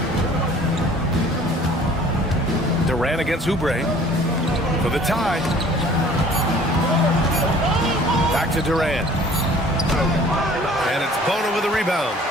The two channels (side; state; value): both; normal; correlation 0.51